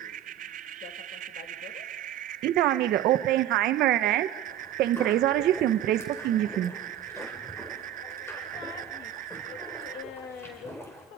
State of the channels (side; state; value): left; quieter; 11.6 dB